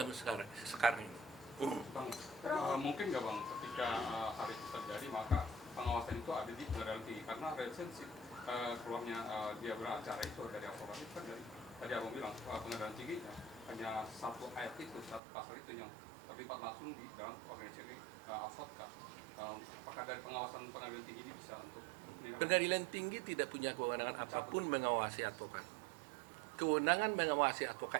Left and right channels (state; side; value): drops out; left; at 15.2 s